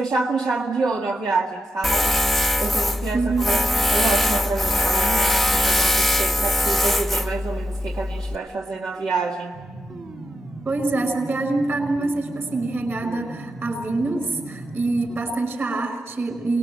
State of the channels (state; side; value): normal; both; correlation 0.88